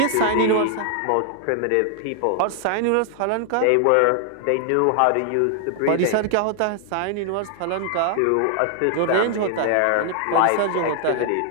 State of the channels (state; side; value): different; both; correlation 0.00